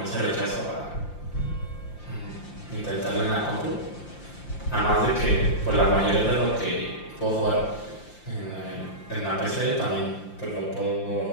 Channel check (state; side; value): late; right; 5.8 ms